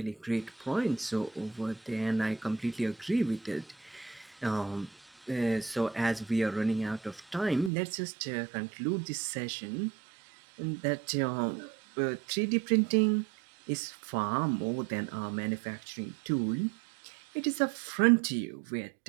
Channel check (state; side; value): drops out; left; at 7.7 s